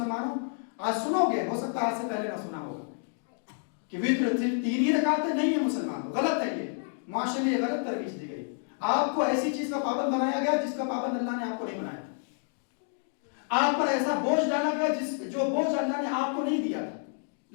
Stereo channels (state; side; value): silent; right; 58 dB below the other